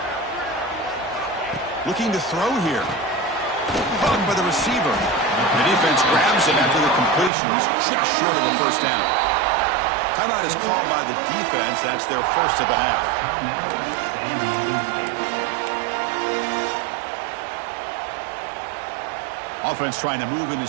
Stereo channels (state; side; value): drops out; left; at 7.3 s